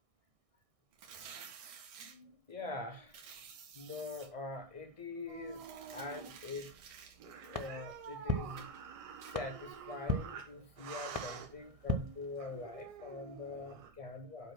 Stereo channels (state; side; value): late; left; 1.6 ms